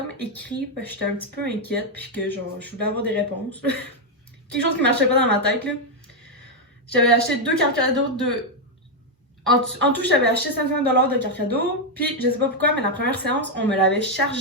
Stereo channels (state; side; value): normal; both; correlation 0.01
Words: écrit parce que j'étais un petit peu inquiète. Puis que genre, je voulais avoir des réponses. Quelque chose qui marchait pas dans ma tête, là. J'avais acheté 2 cartes cadeaux de... En tout, j'avais acheté 500$ de cartes cadeaux. Puis je sais pas pourquoi, mais la première séance, on me l'avait